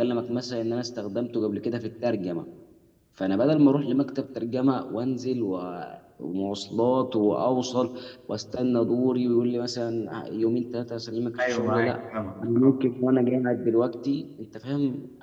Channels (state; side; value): identical; both; correlation 1.00